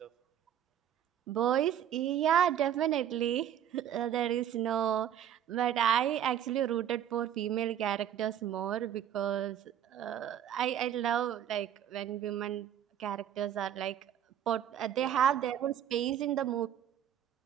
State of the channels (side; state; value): left; quieter; 10.1 dB